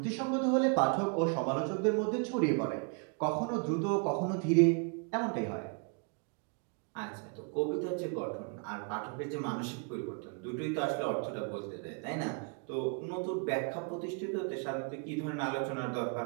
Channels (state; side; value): quieter; left; 36.3 dB